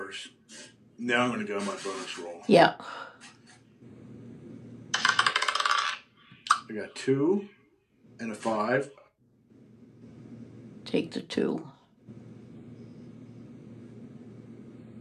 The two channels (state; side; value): identical; both; correlation 1.00